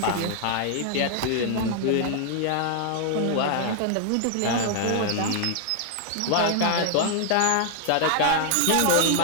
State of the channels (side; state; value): both; different; correlation -0.01